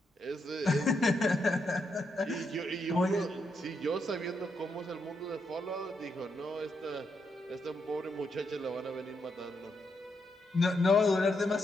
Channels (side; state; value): both; normal; correlation 0.80